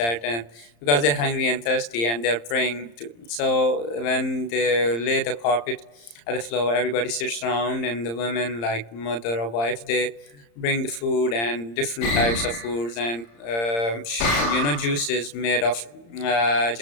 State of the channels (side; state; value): right; late; 35 ms